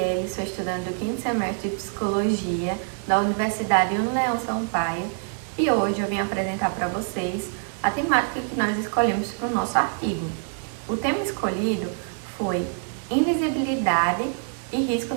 sou estudante do 5º semestre de Psicologia da Universidade Unileão Sampaio e hoje eu vim apresentar para vocês a temática que nós escolhemos para o nosso artigo. O tema escolhido foi Invisibilidade e Risco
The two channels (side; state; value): left; silent; 62 dB below the other